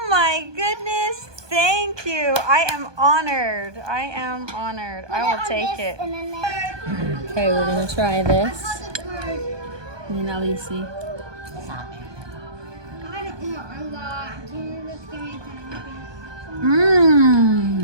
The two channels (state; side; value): late; left; 1.2 ms